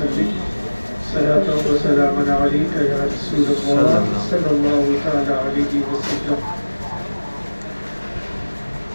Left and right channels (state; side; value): inverted; both; correlation -1.00